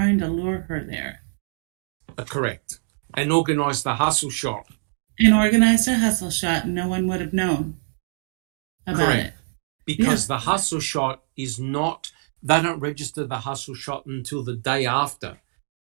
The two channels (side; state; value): left; silent; digital silence